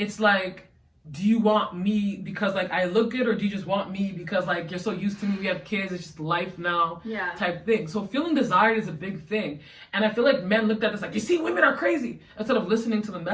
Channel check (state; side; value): identical; both; correlation 1.00